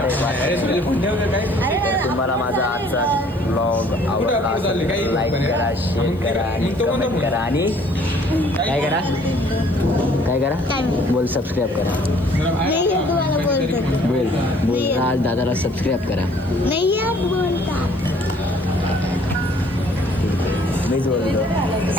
तुम्हाला माझा आजचा ब्लॉग आवडला लाईक करा, शेअर करा आणि कमेंट करा आणि काय करा बोल सबस्क्राईब करा. बोल आज दादाला सबस्क्राईब करा. मीच बोलतो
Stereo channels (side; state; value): left; noise; hiss, 30 dB below the sound